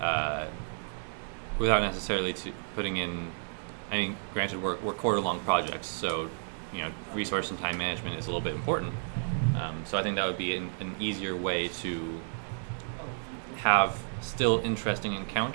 necessarily putting in. I mean, granted, we're quarter-long projects, so resource and time management is a little bit important. So I think that would be an easier way to have still interesting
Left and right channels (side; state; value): left; silent; digital silence